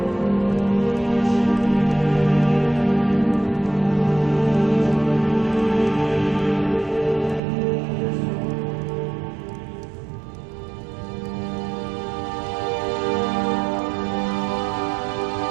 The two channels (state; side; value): drops out; left; at 7.4 s